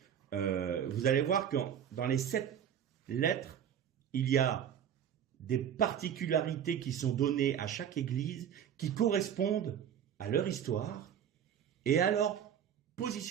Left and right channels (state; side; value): quieter; left; 9.0 dB